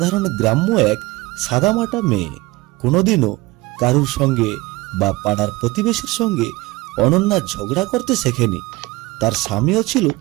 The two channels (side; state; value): left; quieter; 21.4 dB